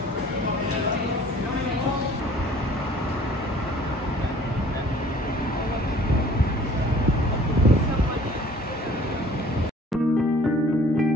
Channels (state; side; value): normal; both; correlation 0.52